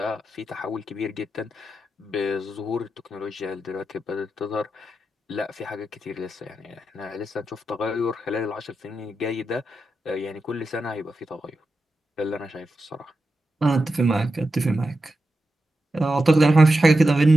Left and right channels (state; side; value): normal; both; correlation 0.89